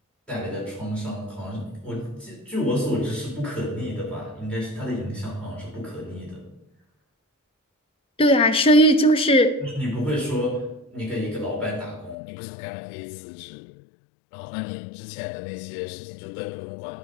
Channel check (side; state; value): right; drops out; at 12.2 s